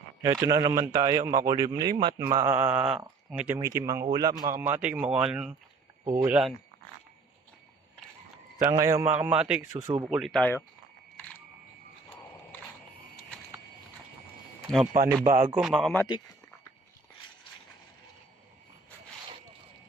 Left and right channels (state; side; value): quieter; left; 4.1 dB